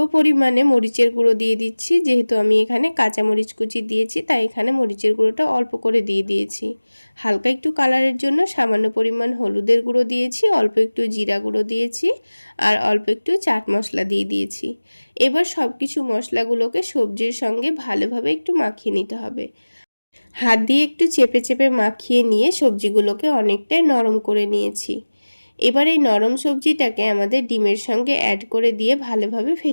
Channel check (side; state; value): both; inverted; correlation -1.00